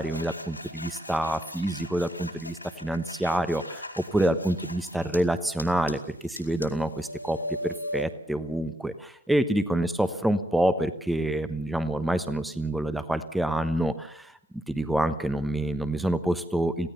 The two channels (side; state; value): both; normal; correlation 0.79